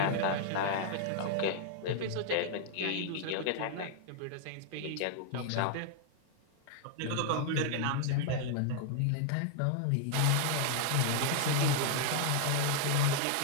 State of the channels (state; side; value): different; both; correlation -0.01